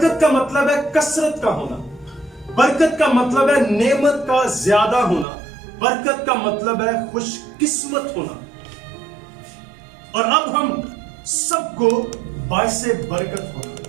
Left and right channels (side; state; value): left; drops out; at 5.2 s